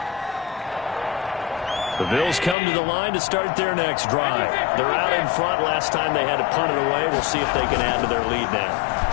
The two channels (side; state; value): right; drops out; at 2.6 s